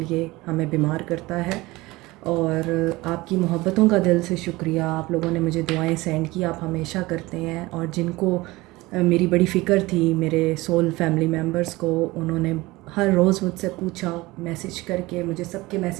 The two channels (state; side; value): quieter; left; 20.6 dB